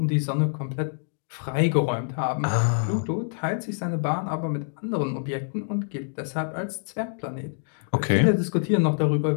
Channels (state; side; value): silent; right; digital silence